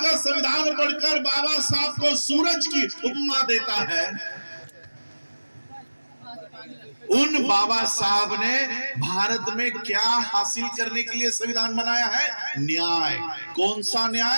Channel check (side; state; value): both; inverted; correlation -1.00